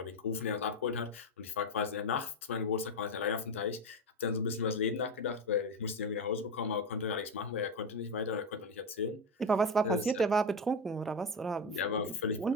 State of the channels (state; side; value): normal; both; correlation 0.14